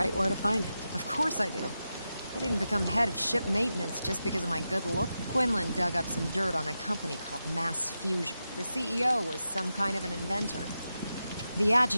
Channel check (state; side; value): inverted; both; correlation -0.90